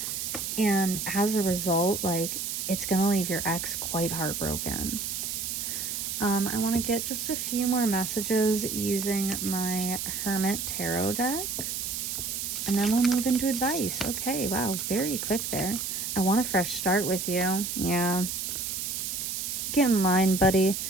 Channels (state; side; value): noise; right; hiss, 3 dB below the sound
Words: And as a result, like it's going to leave your ex quite heartbroken. I want to get just a few more messages using my Hermit Tarot deck. And then we'll move into advice. Okay, wow, very quick there. I want a fresh start with you. Yeah. Get in line, buddy.